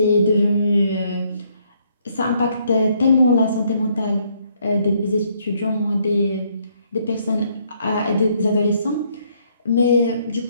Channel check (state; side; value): inverted; both; correlation -0.70